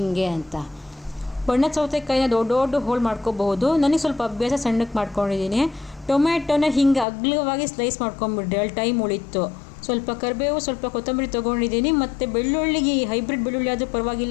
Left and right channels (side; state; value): right; drops out; at 7.1 s